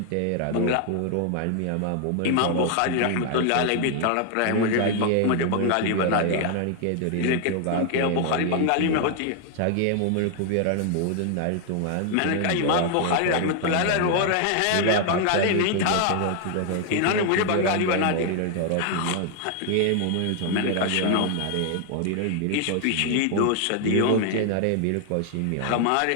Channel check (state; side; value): different; both; correlation 0.00